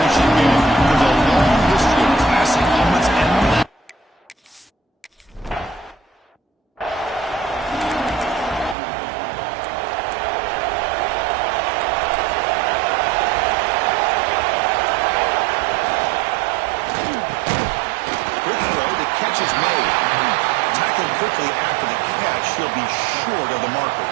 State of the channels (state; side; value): drops out; left; at 8.8 s